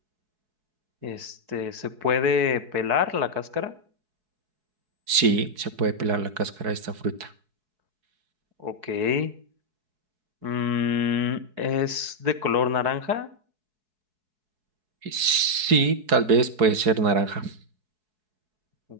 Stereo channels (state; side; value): late; left; 4.7 ms